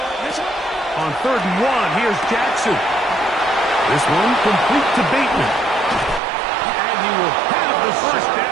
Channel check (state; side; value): drops out; left; at 6.2 s